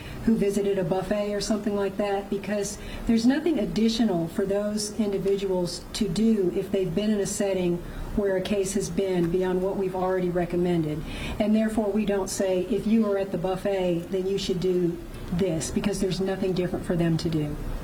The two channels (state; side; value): identical; both; correlation 1.00